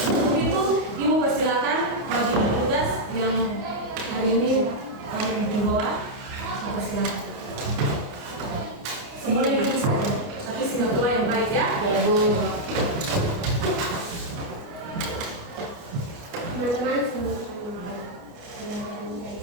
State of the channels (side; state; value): left; late; 29 ms